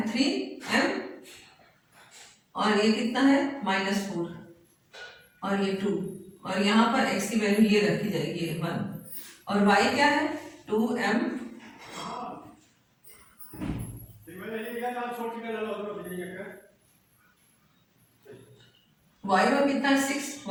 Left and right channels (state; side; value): identical; both; correlation 1.00